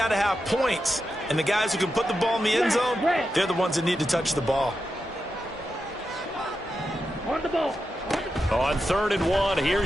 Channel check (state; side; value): normal; both; correlation 0.88